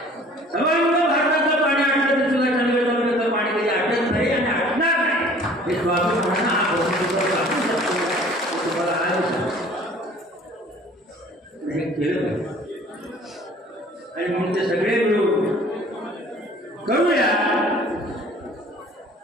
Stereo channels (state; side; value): normal; both; correlation 0.51